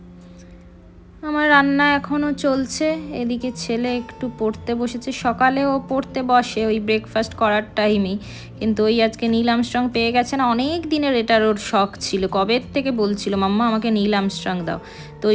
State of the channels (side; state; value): both; identical; correlation 1.00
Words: আমার রান্না এখনও চলছে। এদিকে ছেলে একটু পড়তে বসেছে। সকালে ও পড়তে বসে ওই ব্রেকফাস্ট করার টাইমেই, কিন্তু ওই আজকে নীল আর্মস্ট্রং পেয়ে গেছে না, অনেক দিনের এটার ওর শখ ছিল। কবে থেকে বলছিল মাম্মা আমাকে নীল আর্মস্ট্রং দাও। তো